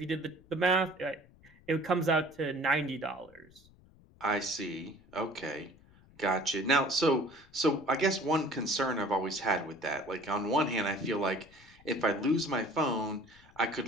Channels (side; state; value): left; noise; rumble, 26 dB below the sound